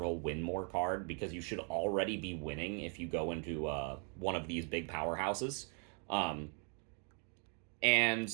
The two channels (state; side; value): quieter; left; 38.9 dB